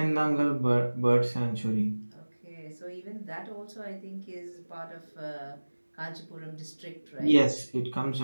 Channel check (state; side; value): inverted; both; correlation -1.00